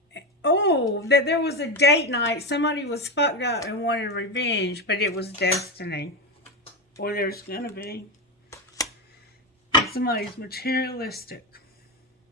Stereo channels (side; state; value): both; normal; correlation 0.15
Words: Oh, that there was a date night. Somebody was fucked up and wanted revenge, but it was destiny. Or there's going to be. Somebody's materialistic.